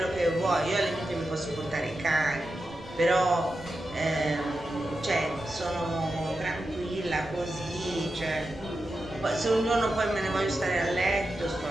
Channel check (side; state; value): right; noise; rumble, 21 dB below the sound